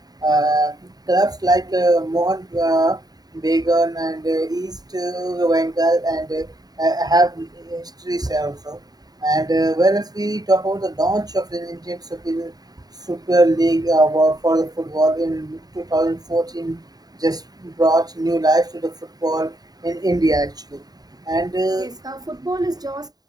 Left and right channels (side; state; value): left; late; 0.19 ms